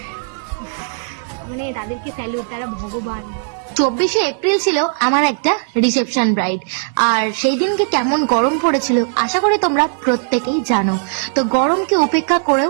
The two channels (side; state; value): left; silent; 68 dB below the other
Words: মানে তাদেরকে স্যালুট, তারা ভগবান। 24শে এপ্রিল ছিল আমার একটা রিসেপশন ব্রাইড, আর সেই দিনকে কেমন গরম পড়েছিল আশা করি তোমরা প্রত্যেকেই জানো। তো গরমকে উপেক্ষা করেও